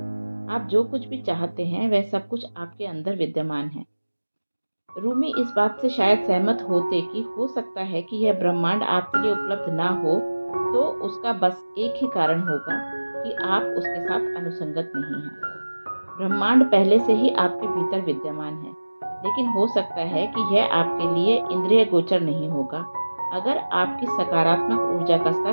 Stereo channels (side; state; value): both; inverted; correlation -1.00